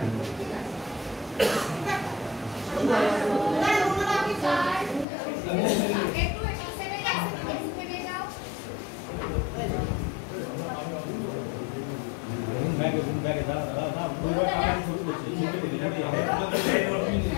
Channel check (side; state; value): right; drops out; at 5.1 s